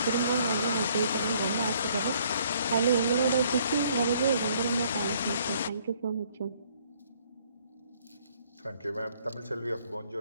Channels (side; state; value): both; inverted; correlation -0.63